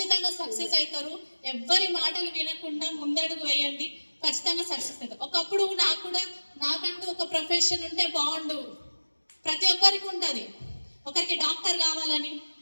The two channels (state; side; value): inverted; both; correlation -1.00